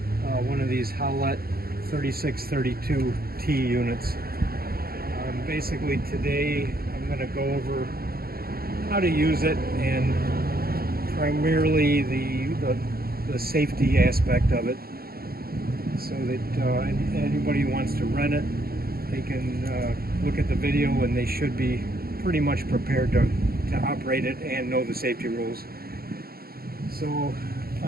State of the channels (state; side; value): late; left; 0.44 ms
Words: one of these Haulotte 3632T units. Basically today I'm going to go over how to use it and primarily the safety aspect of it, so that anybody who wants to rent it, they can look at the video and they should be pretty much prepared to operate it and know the safety rules. So